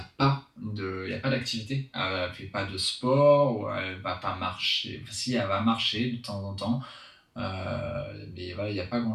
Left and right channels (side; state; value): both; identical; correlation 1.00